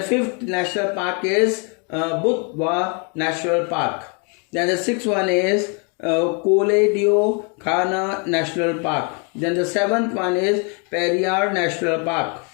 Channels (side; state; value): right; quieter; 35.9 dB